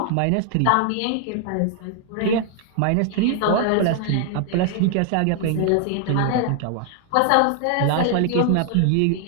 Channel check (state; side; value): different; both; correlation 0.00